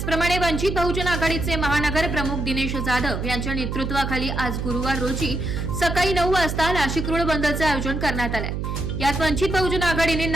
वंचित बहुजन आघाडीचे महानगर प्रमुख दिनेश जाधव यांच्या नेतृत्वाखाली आज गुरुवार रोजी सकाळी 9 वाजता नाशिक रोड बंदचे आयोजन करण्यात आले। यात वंचित बहुजन आघाडीने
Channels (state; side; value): noise; right; hum, 3 dB below the sound